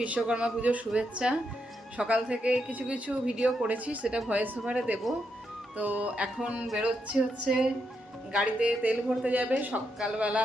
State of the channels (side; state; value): both; normal; correlation 0.82